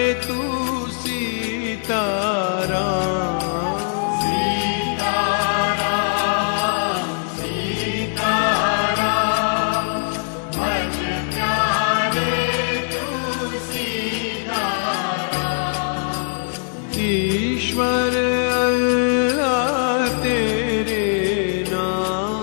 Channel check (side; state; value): right; silent; 65 dB below the other